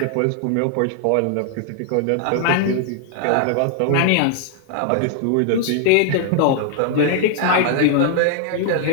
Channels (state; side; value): different; both; correlation 0.00